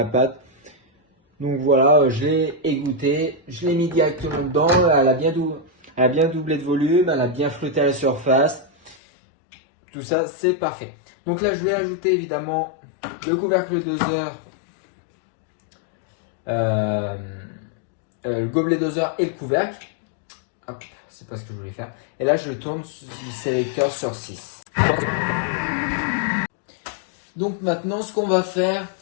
pâte. Donc voilà, je l'ai égoutté, je l'ai mis directement dedans. Elle a bien doublé de volume, elle a bien flotté à la surface. Tout ça, c'est parfait. Donc là, je vais ajouter évidemment le couvercle doseur, le gobelet doseur et le couvercle. Hop, c'est pas ce que je voulais faire. Et là, je tourne le sélecteur sur 6. Donc maintenant, ce qu'on va faire,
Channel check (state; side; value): drops out; right; at 9.0 s